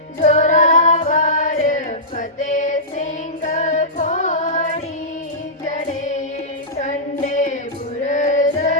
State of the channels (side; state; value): both; normal; correlation -0.17